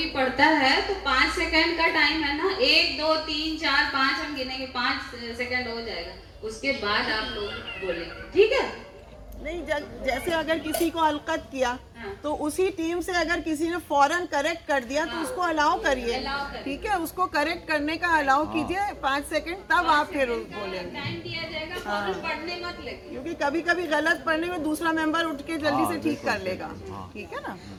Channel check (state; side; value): identical; both; correlation 1.00